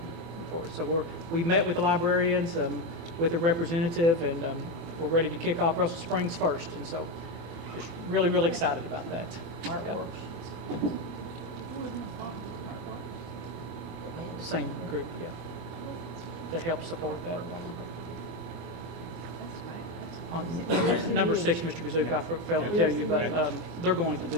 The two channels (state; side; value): late; left; 24 ms